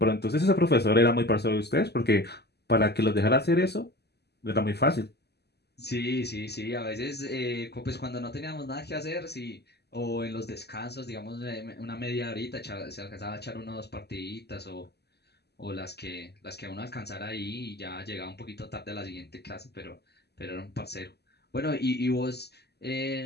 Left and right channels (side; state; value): right; late; 0.48 ms